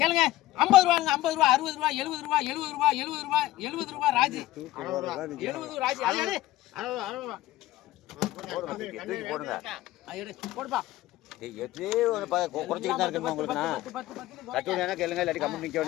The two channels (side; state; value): right; quieter; 16.1 dB